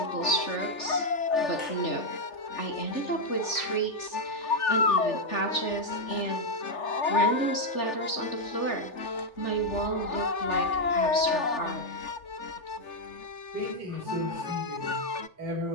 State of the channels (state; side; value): late; right; 3.4 ms